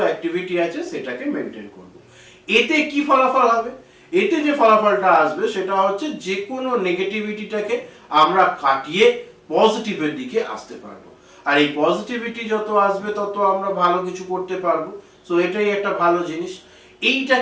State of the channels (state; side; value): identical; both; correlation 1.00